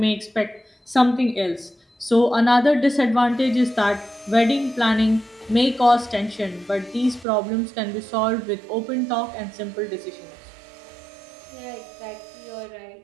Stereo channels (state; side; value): drops out; left; at 7.2 s